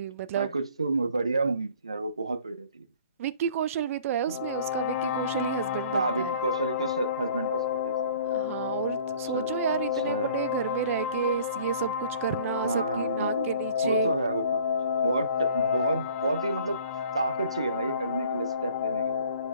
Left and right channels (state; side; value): inverted; both; correlation -0.52